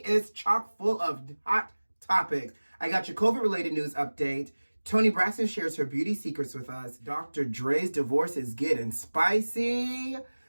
chock full of hot topics. I got your COVID-related news update. Toni Braxton shares her beauty secrets with us. DR.DRE's divorce is getting spicy.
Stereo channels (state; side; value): inverted; both; correlation -1.00